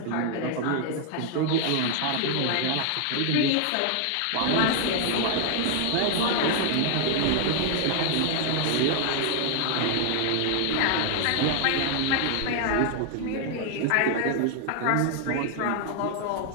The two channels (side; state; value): both; different; correlation 0.00